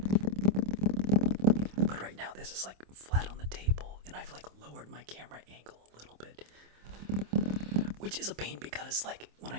But right now this is like flat on the table, and I've like lowered my camera angle a little bit. Which is a pain because like when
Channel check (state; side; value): late; left; 26 ms